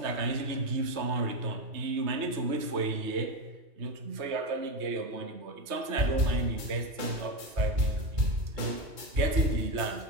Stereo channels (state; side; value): late; left; 3.2 ms